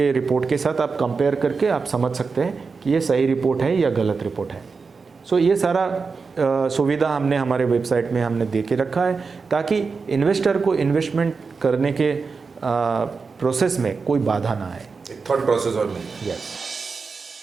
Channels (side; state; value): left; quieter; 4.8 dB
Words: रिपोर्ट के साथ आप कंपेयर करके आप समझ सकते हैं कि ये सही रिपोर्ट है या गलत रिपोर्ट है। सो ये सारा सुविधा हमने हमारे वेबसाइट में हमने दे के रखा है ताकि इन्वेस्टर को इन्वेस्टमेंट करने के प्रोसेस में कोई बाधा ना आए। थॉट प्रोसेस और नहीं। यस।